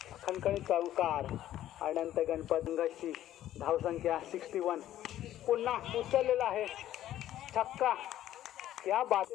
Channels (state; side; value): quieter; right; 12.7 dB